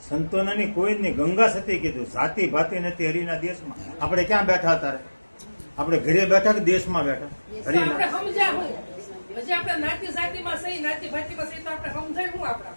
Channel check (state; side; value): inverted; both; correlation -1.00